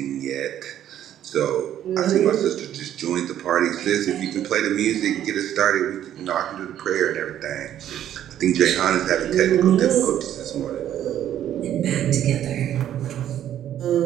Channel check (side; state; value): left; quieter; 11.1 dB